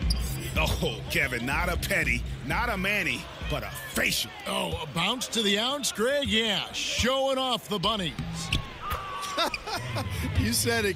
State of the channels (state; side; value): identical; both; correlation 1.00